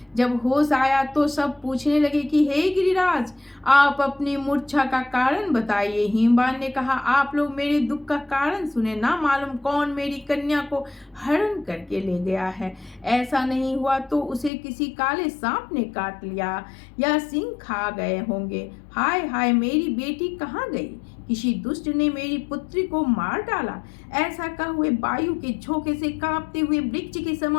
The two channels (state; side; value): drops out; right; at 14.5 s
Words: जब होश आया तो सब पूछने लगे कि हे गिरिराज, आप अपनी मूर्छा का कारण बताइए। हिमवान ने कहा, आप लोग मेरे दुख का कारण सुने। ना मालूम कौन मेरी कन्या को हरण करके ले गया है। ऐसा नहीं हुआ तो उसे किसी काले सांप ने काट लिया या सिंह खा गए होंगे। हाय हाय, मेरी बेटी कहाँ गई? किसी दुष्ट ने मेरी पुत्री को मार डाला। ऐसा कह हुए वायु के झोंके से कांपते हुए वृक्ष के